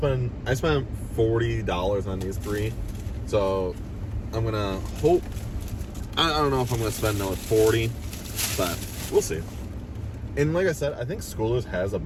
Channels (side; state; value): both; identical; correlation 1.00